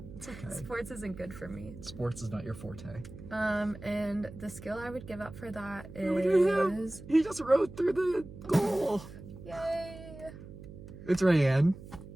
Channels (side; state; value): right; noise; hum, 15 dB below the sound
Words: It's okay. Sports isn't good for me. Sports is not your forte. And the skill I would give up for that Look at him. is... He just rode through the goal. Yay! It's Rayanne